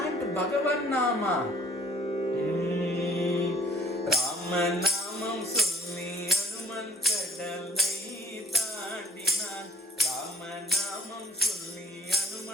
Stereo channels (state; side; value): normal; both; correlation 0.58